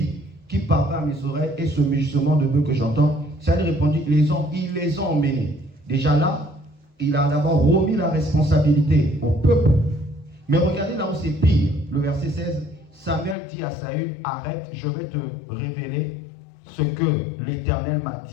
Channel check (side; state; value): right; drops out; at 13.4 s